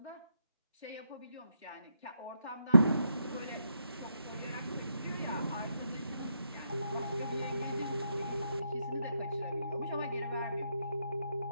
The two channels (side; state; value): both; inverted; correlation -0.80